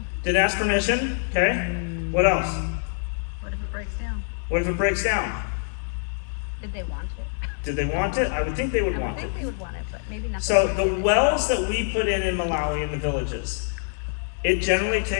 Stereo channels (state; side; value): silent; right; digital silence